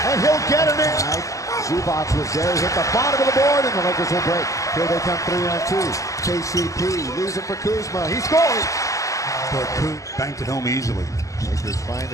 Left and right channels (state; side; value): late; right; 0.16 ms